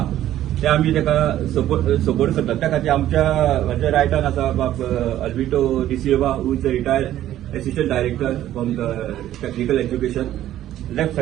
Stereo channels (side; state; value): left; quieter; 12.8 dB